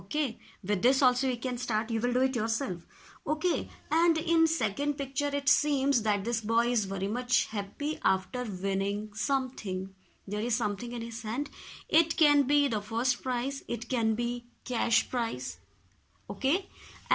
with this also you can start. You will do it yourself. Okay, and in second picture it seems that this boy is very much happy after winning something. There is something in his hand. It can be the first prize, it can be cash prize. Okay,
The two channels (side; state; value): both; identical; correlation 1.00